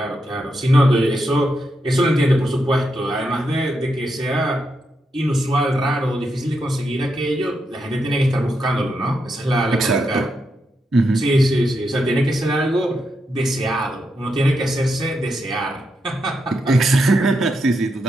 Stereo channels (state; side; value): normal; both; correlation 0.83